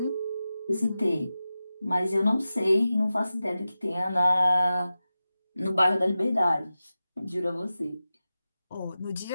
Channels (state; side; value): inverted; both; correlation -0.94